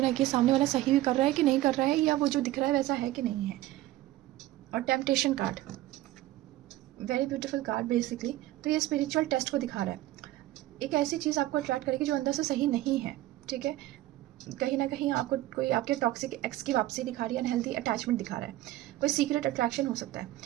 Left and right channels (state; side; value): quieter; left; 15.9 dB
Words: है कि सामने वाला सही भी कर रहा है कि नहीं कर रहा है, या वो जो दिख रहा है वैसा है कि नहीं है। और temptation card, very beautiful card basically. तो ये स्पिरिचुअल टेस्ट को दिखा रहा है, एक ऐसी चीज़ आपको अट्रैक्ट करेगी जो अंदर से सही नहीं है, ठीक है। कहीं ना कहीं आपको कोई आपके टॉक्सिक एक्स की वापसी दिखा रही है, अनहेल्दी अटैचमेंट दिखा रहा है, कोई सीक्रेट अट्रैक्शन हो सकता है,